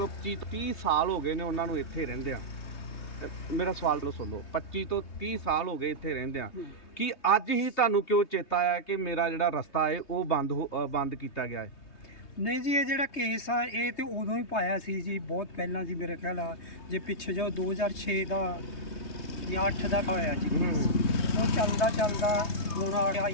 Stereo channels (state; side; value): late; right; 3.2 ms